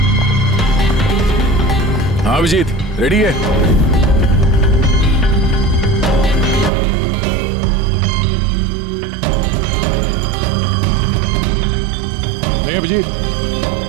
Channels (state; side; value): drops out; left; at 6.7 s